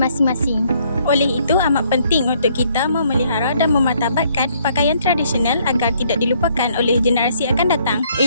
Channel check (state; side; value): inverted; both; correlation -0.66